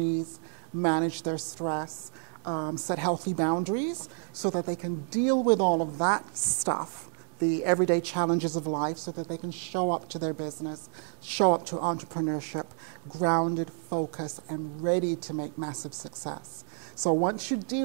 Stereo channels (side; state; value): left; silent; 58 dB below the other